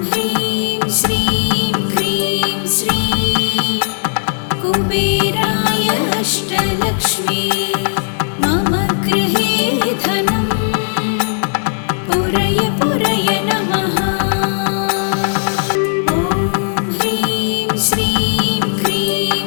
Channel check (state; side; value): silent; right; 58 dB below the other